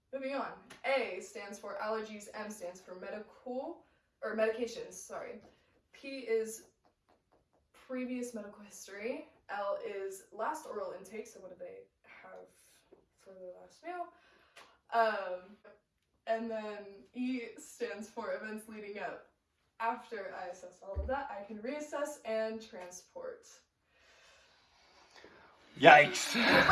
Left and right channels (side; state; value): both; identical; correlation 1.00